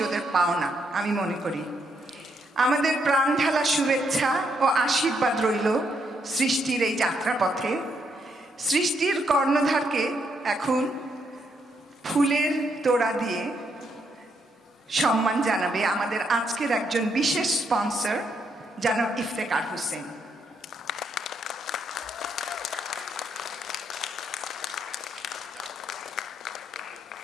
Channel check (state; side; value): normal; both; correlation 0.76